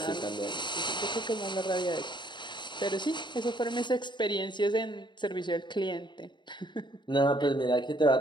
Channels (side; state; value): right; late; 0.22 ms